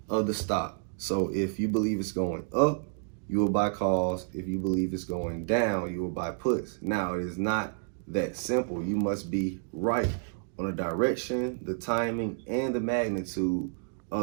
of the stock. So if you believe it's going up, you will buy calls. If you believe it's going down, you will buy puts. Now, it is not that simple. You must be right on the direction, the timing, and the magnitude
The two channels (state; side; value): silent; left; digital silence